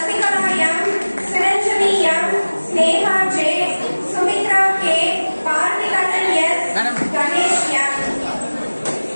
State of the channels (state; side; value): inverted; both; correlation -1.00